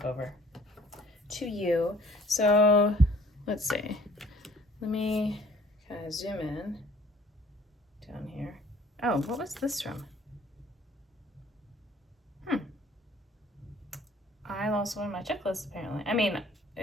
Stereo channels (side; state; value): both; normal; correlation 0.55